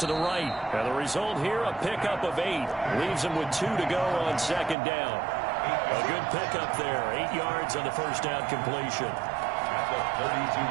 the right. And the result here, a pickup of 8. Leaves them with 2 to go on 2nd down. A good pickup there. 8 yards on the first down completion. At the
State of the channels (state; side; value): drops out; left; at 4.8 s